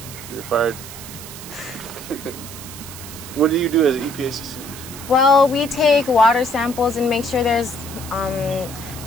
You're fired. What do you do as an EPA assistant? Well, we take water samples and make sure there's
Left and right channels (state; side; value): noise; right; hiss, 13 dB below the sound